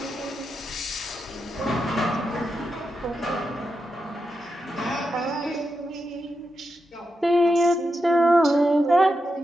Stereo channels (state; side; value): normal; both; correlation 0.87